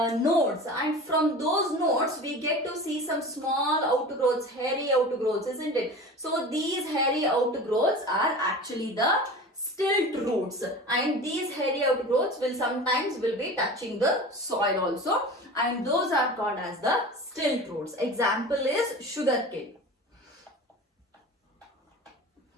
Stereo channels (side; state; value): both; normal; correlation 0.35